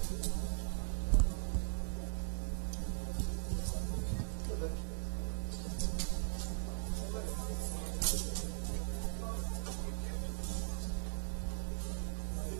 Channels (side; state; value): left; silent; digital silence